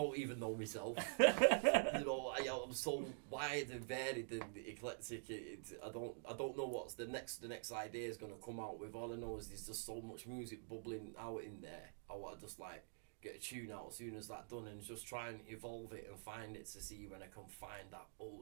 even know myself. You know, I'm so wide and varied and eclectic. I don't know what's the next idea is gonna come out with. All I know is there's just so much music bubbling out in there. I want to just like get a tune out as soon as that's done and just try and evolve it and find it to see when I can find that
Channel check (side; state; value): left; silent; digital silence